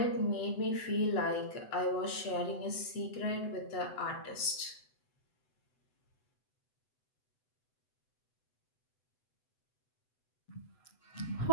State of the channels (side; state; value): right; late; 7.9 ms